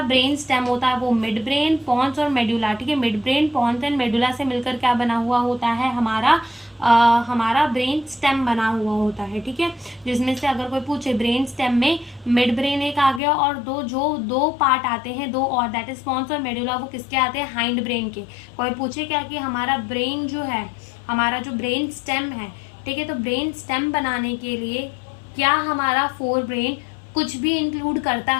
ब्रेन स्टेम होता है वो मिड ब्रेन, पॉन्स और मेडुला, ठीक है, midbrain, pons and medulla से मिलकर क्या बना हुआ होता है, हमारा ब्रेन स्टेम बना हुआ होता है, ठीक है, जिसमें से अगर कोई पूछे ब्रेन स्टेम में मिड ब्रेन एक आ गया और दो पार्ट आते हैं, दो और, दैट इज पॉन्स और मेडुला, वो किसके आते हैं, हाइंड ब्रेन के। कोई पूछे क्या कि हमारा ब्रेन जो है, हमारा जो ब्रेन स्टेम है, ठीक है, तो ब्रेन स्टेम बनाने के लिए क्या हमारा फोर ब्रेन कुछ भी इंक्लूड करता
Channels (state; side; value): drops out; right; at 13.2 s